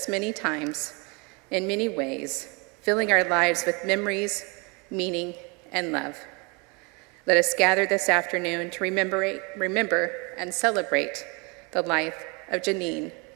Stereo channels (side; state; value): left; quieter; 30.4 dB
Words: many times, in many ways, filling our lives with memories, meaning, and love. Let us gather this afternoon to remember and celebrate the life of Jeanine